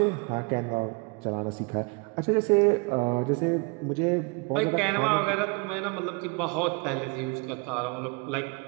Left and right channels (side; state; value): left; quieter; 31.1 dB